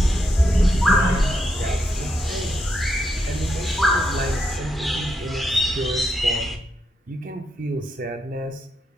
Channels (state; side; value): normal; both; correlation 0.81